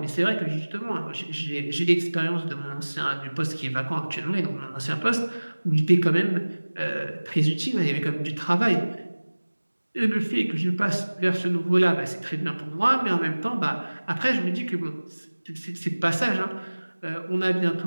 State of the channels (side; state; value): both; inverted; correlation -1.00